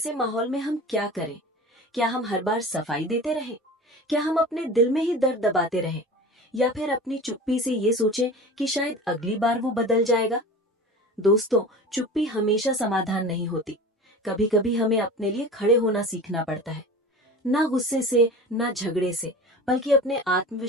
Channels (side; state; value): both; normal; correlation 0.35